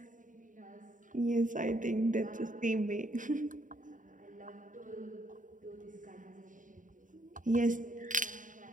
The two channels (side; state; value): left; late; 0.38 ms